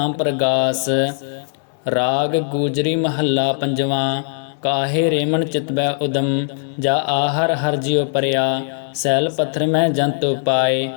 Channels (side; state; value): right; silent; 66 dB below the other